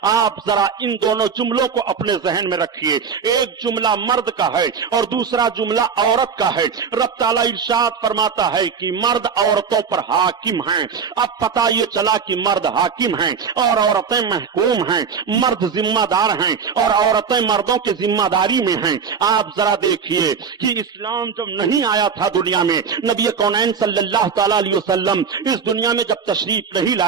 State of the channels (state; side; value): quieter; left; 6.3 dB